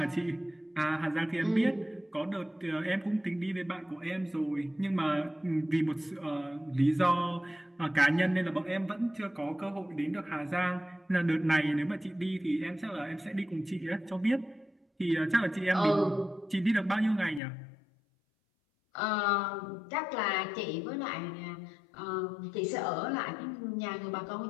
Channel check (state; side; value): drops out; right; at 17.4 s